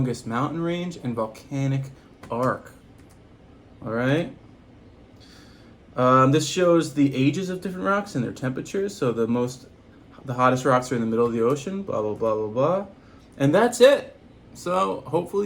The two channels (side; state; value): both; identical; correlation 1.00